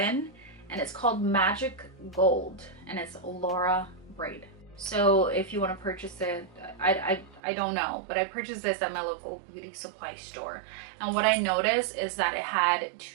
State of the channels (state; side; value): drops out; left; at 7.4 s